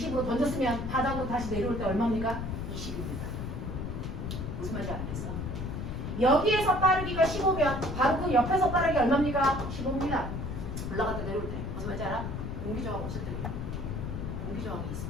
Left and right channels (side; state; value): left; noise; rumble, 4 dB below the sound